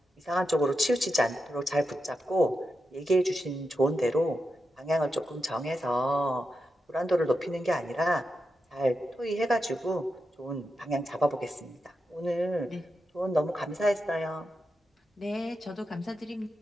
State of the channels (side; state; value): both; normal; correlation 0.87